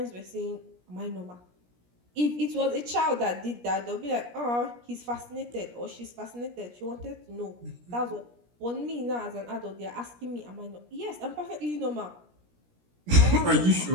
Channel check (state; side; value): late; left; 17 ms